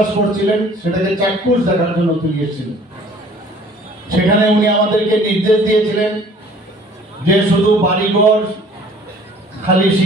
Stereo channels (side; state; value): both; normal; correlation 0.53